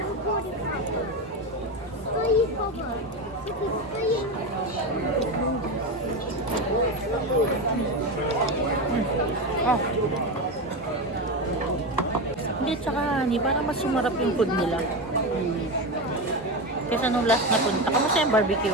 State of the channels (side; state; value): both; normal; correlation 0.17